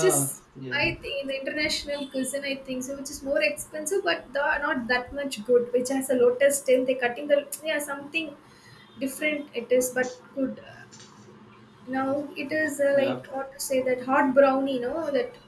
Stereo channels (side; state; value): both; identical; correlation 1.00